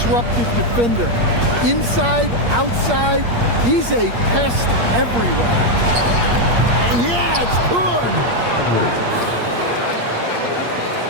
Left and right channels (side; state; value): left; late; 8.5 ms